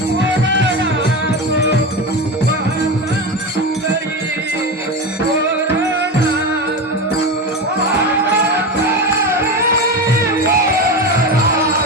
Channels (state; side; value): normal; both; correlation 0.21